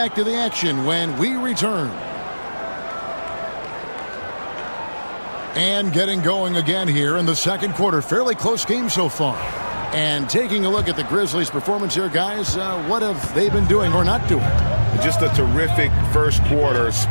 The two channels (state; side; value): inverted; both; correlation -1.00